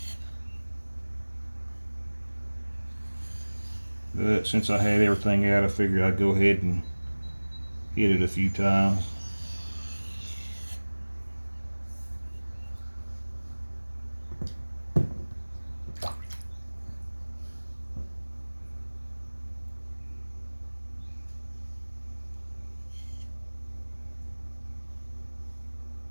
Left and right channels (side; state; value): both; inverted; correlation -1.00